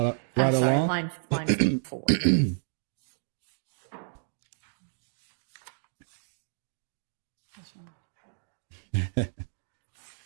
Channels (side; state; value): left; silent; 57 dB below the other